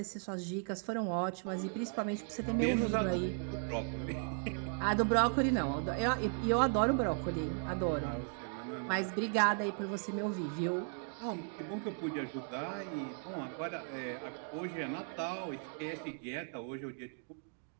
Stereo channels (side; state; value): left; silent; 53 dB below the other